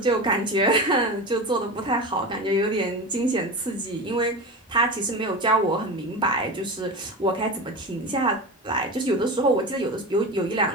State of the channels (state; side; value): normal; both; correlation 0.26